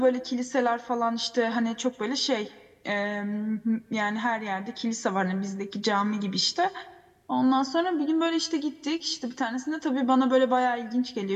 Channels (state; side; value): identical; both; correlation 1.00